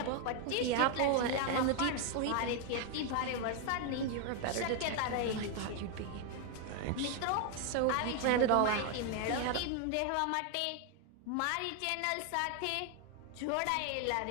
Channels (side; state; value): both; different; correlation 0.00